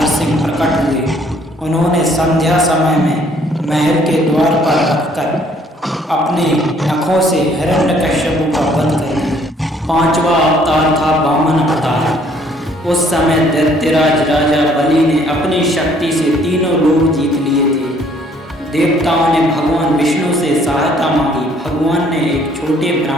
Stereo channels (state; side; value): normal; both; correlation 0.62